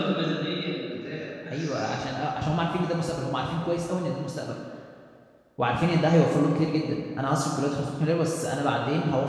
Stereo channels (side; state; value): both; identical; correlation 1.00